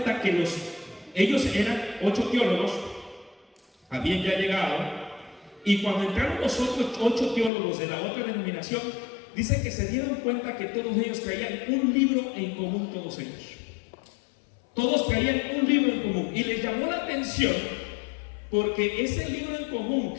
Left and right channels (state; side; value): drops out; right; at 7.5 s